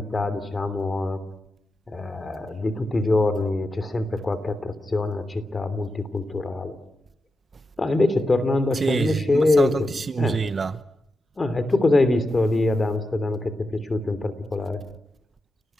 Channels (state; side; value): normal; both; correlation 0.89